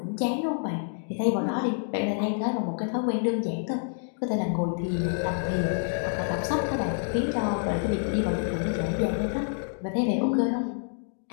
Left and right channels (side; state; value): right; silent; digital silence